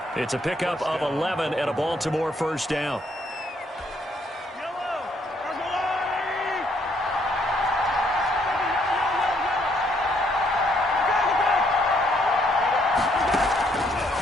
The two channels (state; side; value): normal; both; correlation 0.70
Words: It's a pickup of 11 and a Baltimore 1st down.